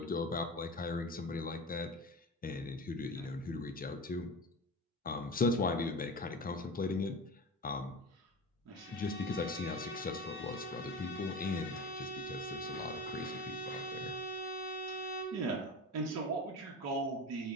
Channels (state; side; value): normal; both; correlation 0.29